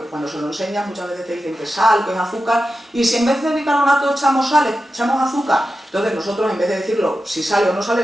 cuando se lo enseñas muchas veces te dicen que es sal, que es azúcar, y si en vez de bicarbonato echamos sal, echamos azúcar, entonces nosotros en vez de decirlo si sale o no sale,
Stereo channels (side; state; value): both; normal; correlation 0.91